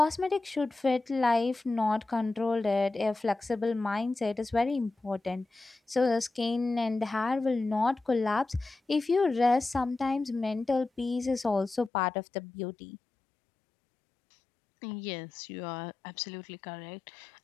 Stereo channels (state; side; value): drops out; right; at 11.9 s